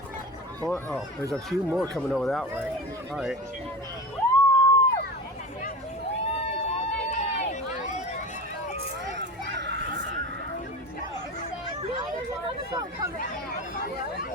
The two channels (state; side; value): normal; both; correlation 0.30